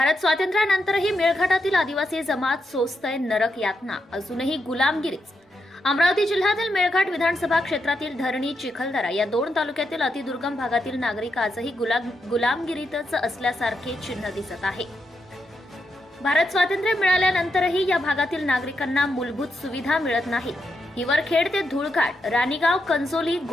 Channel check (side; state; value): both; normal; correlation 0.83